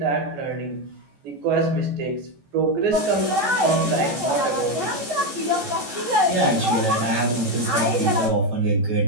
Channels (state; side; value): late; left; 14 ms